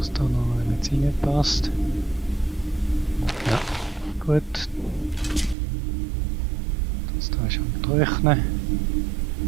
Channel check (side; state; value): left; drops out; at 5.6 s